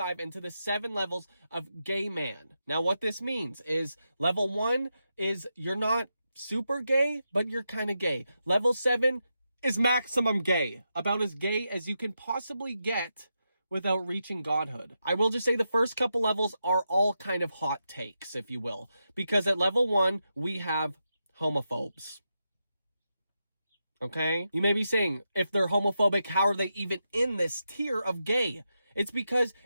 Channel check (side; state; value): both; inverted; correlation -0.86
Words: into the 7 levels of gay man. Now, what this means is level 1 is you're not super gay, but you're kind of gay. Level 7 is maximum gay. About as gay as you can possibly get without reaching godhood. I will just say the first couple levels are all kind of hot takes, if you will. Because at level 1, we have homophobes. Okay? You may be saying, if they're homophobic, how are they even in this tier of gay? It's because